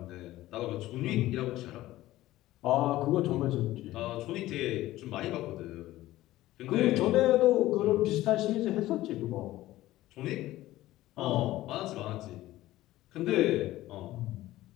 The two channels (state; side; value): quieter; right; 16.0 dB